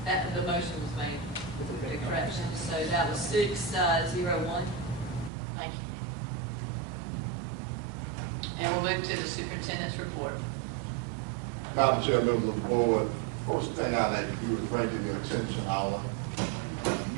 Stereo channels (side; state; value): left; drops out; at 5.3 s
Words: The motion was made with the correction, so that was 601. Thank you. And we'll move to the superintendent's report. Madam Chair, members of the board, first thing I'd like to do is bring to your attention our